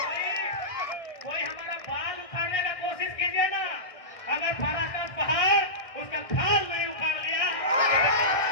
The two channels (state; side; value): late; right; 1.6 ms